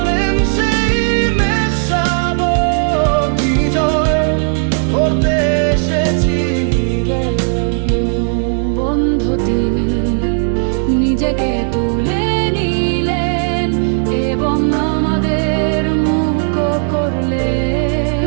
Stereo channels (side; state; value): left; silent; 60 dB below the other